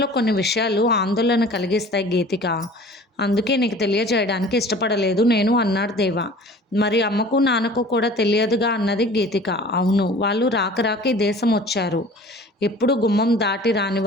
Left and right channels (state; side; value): normal; both; correlation 0.45